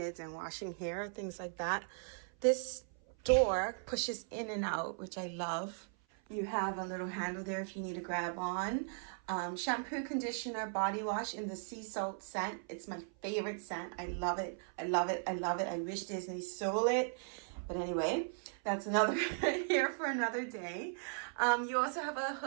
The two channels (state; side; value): silent; left; 53 dB below the other